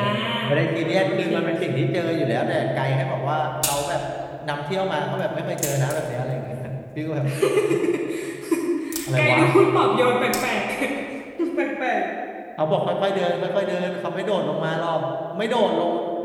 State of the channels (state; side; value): identical; both; correlation 1.00